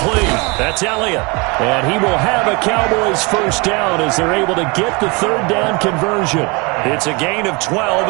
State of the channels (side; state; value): left; quieter; 28.2 dB